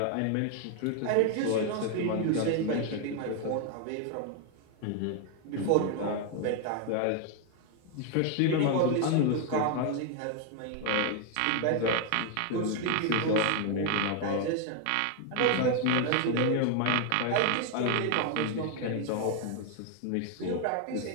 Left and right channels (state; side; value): different; both; correlation 0.01